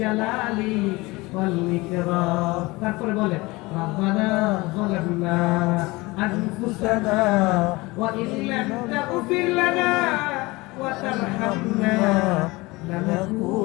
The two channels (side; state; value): right; quieter; 22.5 dB